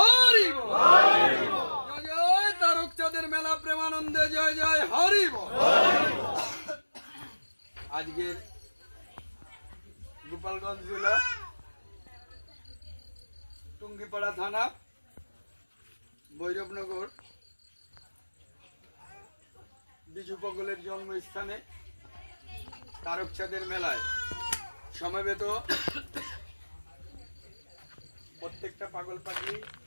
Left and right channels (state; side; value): inverted; both; correlation -1.00